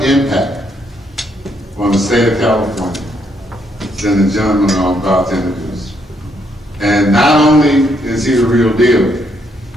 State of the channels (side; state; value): both; normal; correlation 0.73